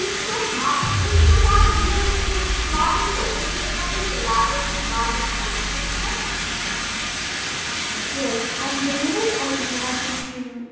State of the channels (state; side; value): identical; both; correlation 1.00